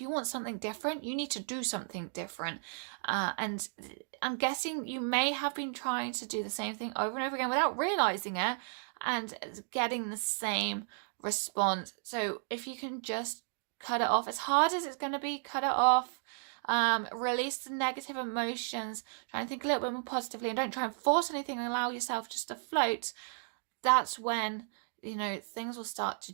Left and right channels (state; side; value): silent; left; digital silence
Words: want something different, you need to do something different. And I'm guessing you may have been trying to do the same thing over and over again without realizing it and getting the same response. So if you can just cut it off, as hard as it's going to be, cut it off. Release the negative emotions. Try and think a little bit more positively, and don't try and force anything and allow yourself just to float. That's when, you know, things will start to